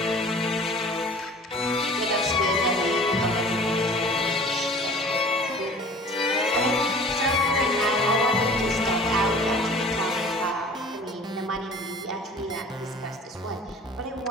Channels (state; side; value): normal; both; correlation 0.46